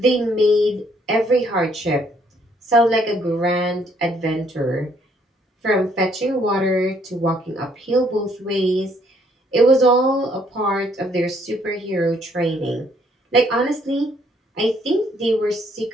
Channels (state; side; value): normal; both; correlation 0.67